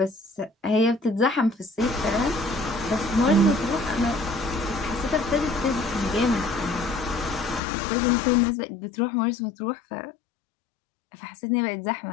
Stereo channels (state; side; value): drops out; right; at 7.6 s